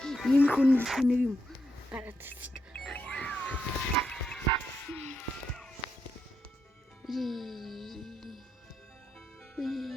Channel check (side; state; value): both; normal; correlation 0.81